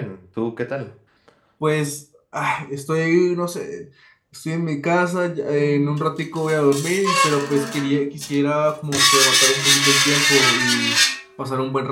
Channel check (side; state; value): both; identical; correlation 1.00